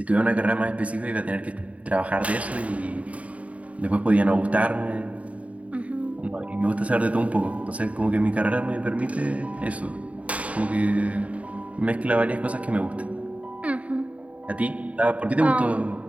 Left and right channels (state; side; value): late; left; 0.067 ms